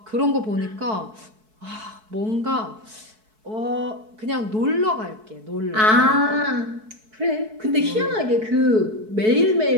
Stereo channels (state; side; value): late; left; 4.6 ms